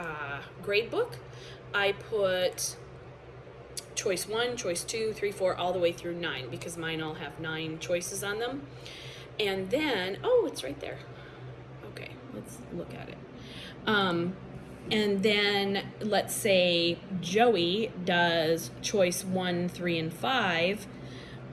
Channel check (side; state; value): both; identical; correlation 1.00